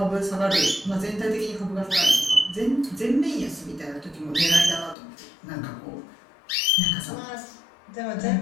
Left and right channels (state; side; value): drops out; right; at 5.0 s